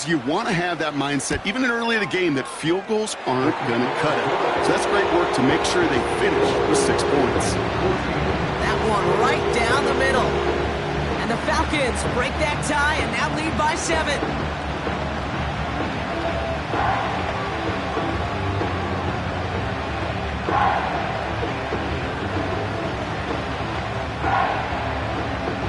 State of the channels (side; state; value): both; identical; correlation 1.00